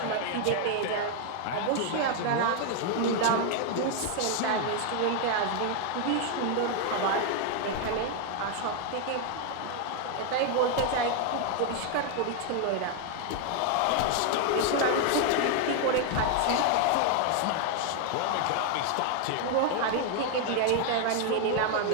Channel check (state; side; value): different; both; correlation 0.00